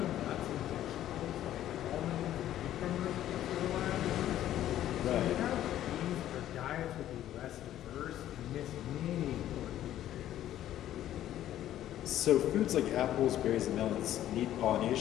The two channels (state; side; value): quieter; right; 12.4 dB